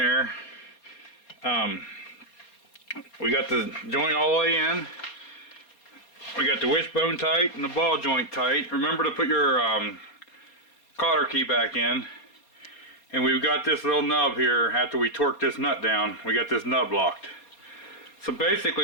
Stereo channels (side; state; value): right; late; 4.2 ms